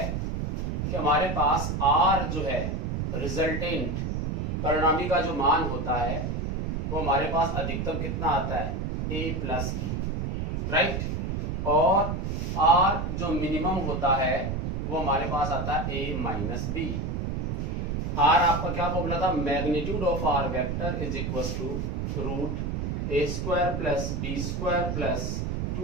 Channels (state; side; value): noise; right; rumble, 2 dB below the sound